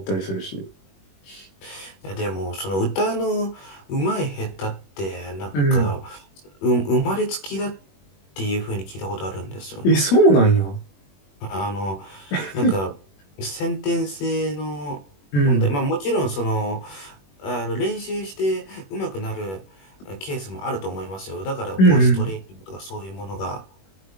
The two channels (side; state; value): right; late; 21 ms